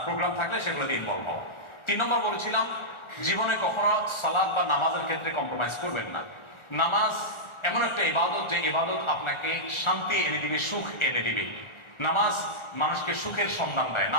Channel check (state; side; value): late; right; 1.4 ms